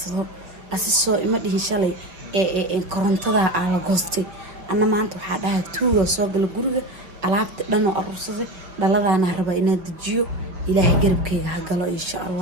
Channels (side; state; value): left; late; 5.6 ms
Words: asisoo ima dhihin shalay korontada aan la goostay anna maanta waxa dhahay tuuga soo gal guriga alaabta dhan oo arursaday dhaladaana rabaa inaan dejiyo ilaahay garabkayga ha galo insha